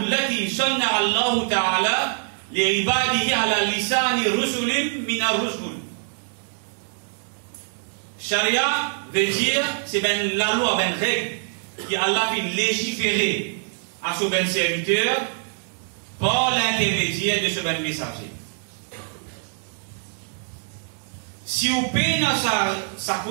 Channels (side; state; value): left; silent; digital silence